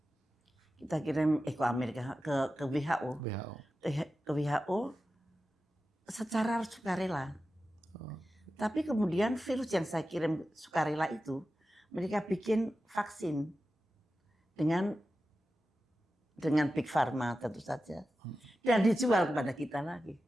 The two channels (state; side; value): normal; both; correlation 0.93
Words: Kita kirim ke Amerika, ke WHO. Ke WHO secara sukarela. Tapi kemudian virus yang saya kirim sukarela itu, mereka bikin vaksin dengan Big Pharma tentu saja. Dan dijual kepada kita lagi.